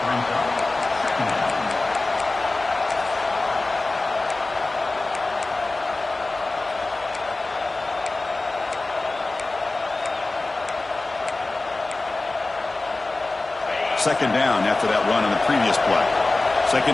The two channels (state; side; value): quieter; right; 3.2 dB